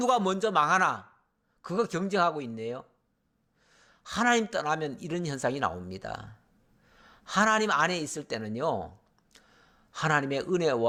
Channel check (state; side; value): identical; both; correlation 1.00